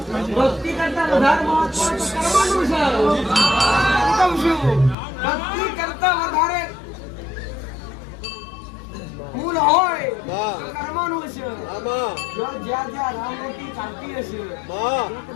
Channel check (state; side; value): drops out; right; at 5.0 s